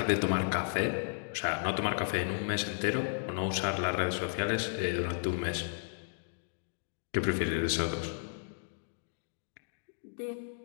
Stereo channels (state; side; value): silent; right; digital silence